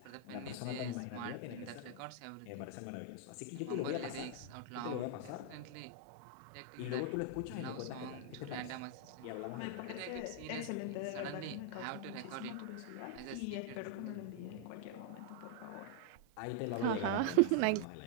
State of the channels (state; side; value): different; both; correlation 0.00